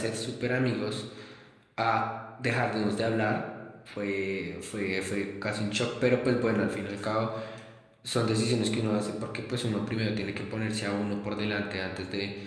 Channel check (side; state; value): both; identical; correlation 1.00